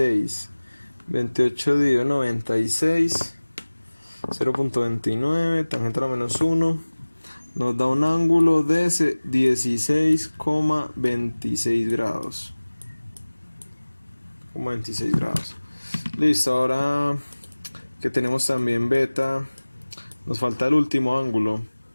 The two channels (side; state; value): both; inverted; correlation -1.00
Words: 28 dividido 96. 0.29, tangente a la menos 1. Nos da un ángulo de 16,26 grados. 26 grados. Listo, ahora que tenemos también beta, nos falta el último ángulo,